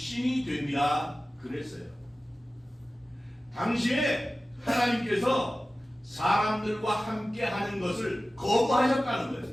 됩니다. 그랬어요. 당시에 하나님께서 사람들과 함께 하는 것을 거부하셨다는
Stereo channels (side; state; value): both; normal; correlation 0.96